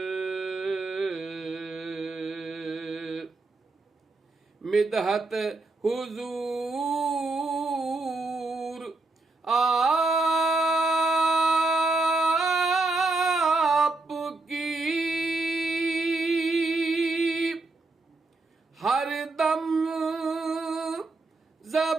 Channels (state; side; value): quieter; left; 3.3 dB